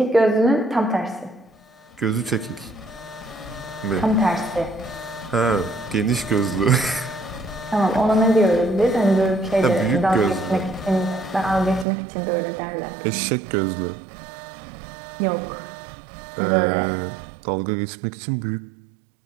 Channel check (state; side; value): drops out; left; at 11.9 s